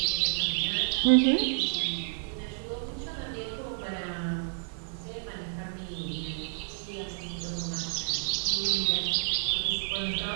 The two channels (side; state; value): left; silent; digital silence